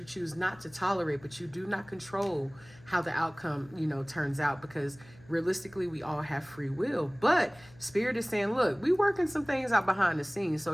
choose not to tolerate, but you do not control how the outcome, turns out, because realistically, we all have free will. But Spirit is saying, look, we working some things out behind the scenes,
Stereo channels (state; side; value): noise; left; hum, 24 dB below the sound